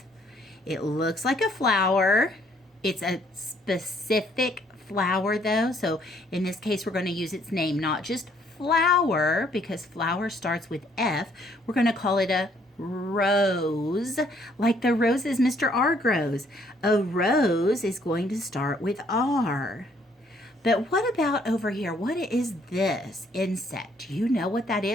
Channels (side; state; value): both; normal; correlation 0.65